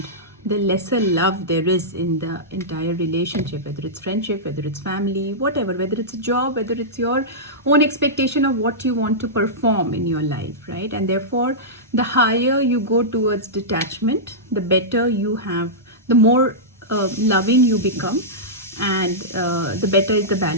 the lesser love there is in the entire relationship, whether it's friendship, whether it's family, whatever, whether it's a job, whether it's your own expectation of what you want to perform in your life, right? And therefore the higher you go towards detachment, the better you have, the more loving you become, and the better is the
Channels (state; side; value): normal; both; correlation -0.13